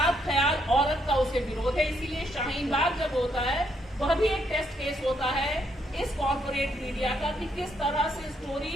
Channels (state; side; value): normal; both; correlation 0.74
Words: ख्याल औरत का उसे विरोध है। इसीलिए शाहीन बाग जब होता है वह भी एक टेस्ट केस होता है इस कॉर्पोरेट मीडिया का कि किस तरह से